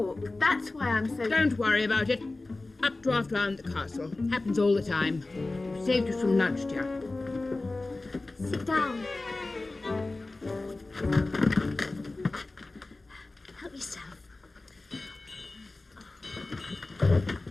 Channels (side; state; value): right; quieter; 3.1 dB